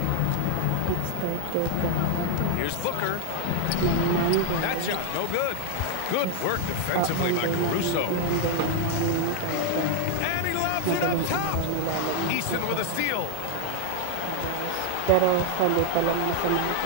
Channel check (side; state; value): both; different; correlation 0.00